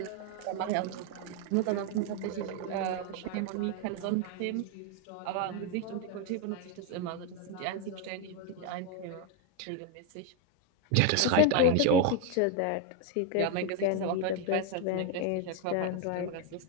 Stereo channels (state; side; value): different; both; correlation 0.01